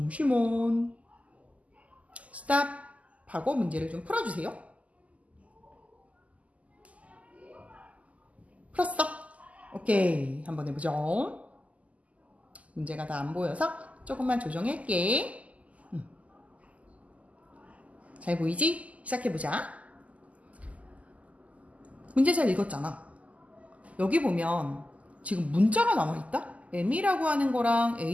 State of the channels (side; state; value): left; late; 0.071 ms